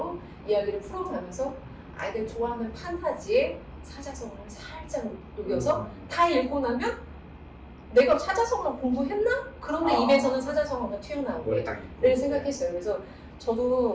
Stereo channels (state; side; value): identical; both; correlation 1.00